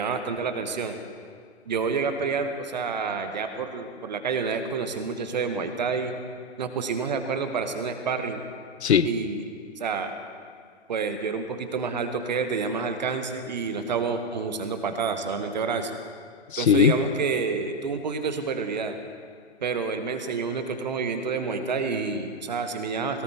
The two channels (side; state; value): both; normal; correlation 0.09